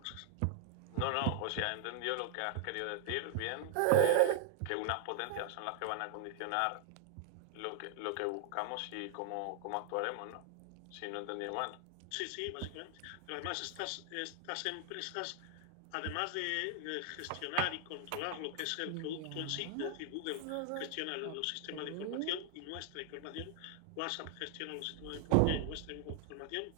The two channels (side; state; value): both; different; correlation 0.00